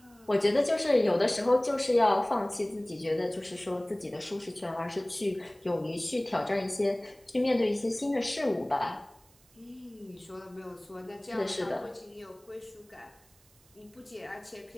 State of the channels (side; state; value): right; noise; hiss, 30 dB below the sound